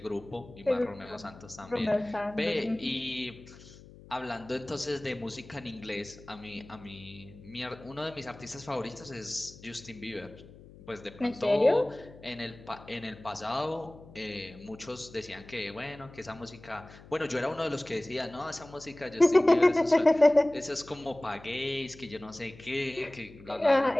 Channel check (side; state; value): left; noise; hum, 20 dB below the sound